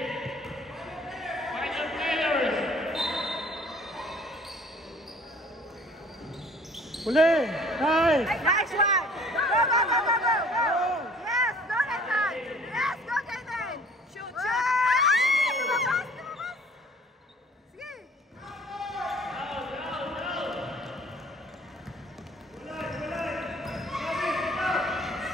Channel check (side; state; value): both; normal; correlation 0.53